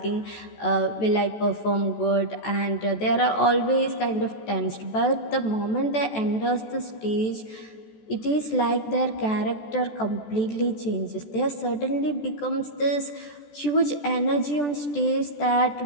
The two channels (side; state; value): right; late; 14 ms